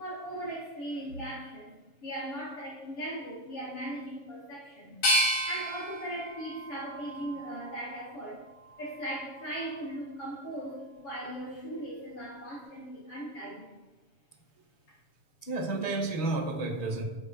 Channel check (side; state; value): right; late; 7.1 ms